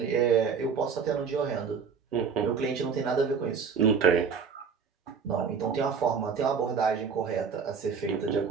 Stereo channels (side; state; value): left; quieter; 6.2 dB